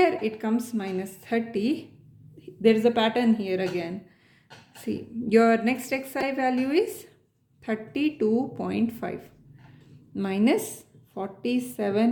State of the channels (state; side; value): identical; both; correlation 1.00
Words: it comes minus 30, there is a pattern here again. See, your next xi value is 32.5 minus